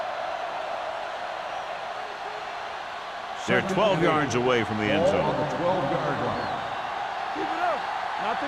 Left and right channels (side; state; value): both; identical; correlation 1.00